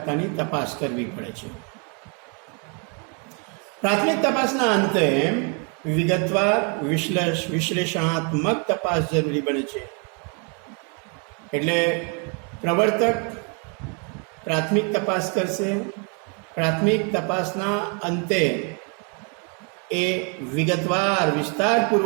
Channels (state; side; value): quieter; left; 36.6 dB